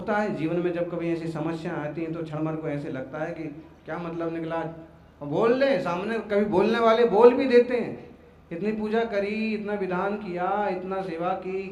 है जीवन में जब कभी ऐसी समस्या आती हैं तो क्षण भर को ऐसे लगता है कि क्या मतलब निकला, और बोल ले सामने। कभी बोलने वाले बोल भी देते हैं, इतनी पूजा करी, इतना विधान किया, इतना सेवा की,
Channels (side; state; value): both; identical; correlation 1.00